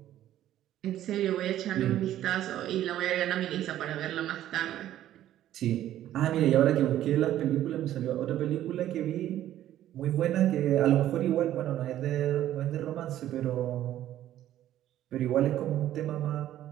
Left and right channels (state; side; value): quieter; left; 12.6 dB